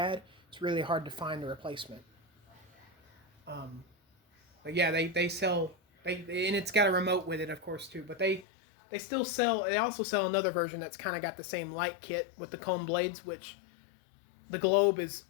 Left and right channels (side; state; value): right; drops out; at 8.5 s